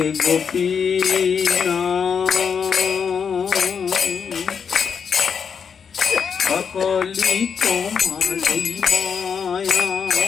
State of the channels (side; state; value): right; quieter; 6.6 dB